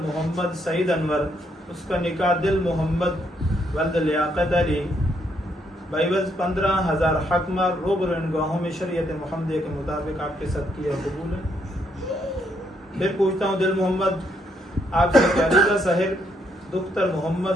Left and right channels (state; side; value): normal; both; correlation 0.74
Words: मोहम्मद सईद अनवर, उसका निकाह दिल मोहम्मद वल्द लियाकत अली बाइवज 15,000 हकमार रोबरो इन गवाहों में शरीयत मुहम्मदिया के मुताबिक आपके साथ किया कबूल है। फिर पूछता हूँ दिल मोहम्मद आपसे अलीज़ा साहिर दुख्तर